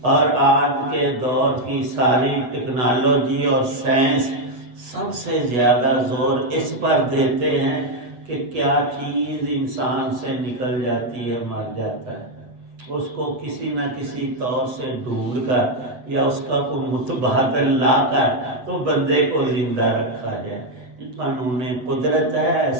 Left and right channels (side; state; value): left; late; 8.1 ms